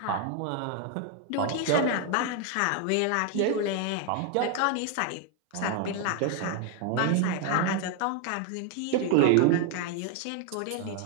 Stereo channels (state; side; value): different; both; correlation 0.01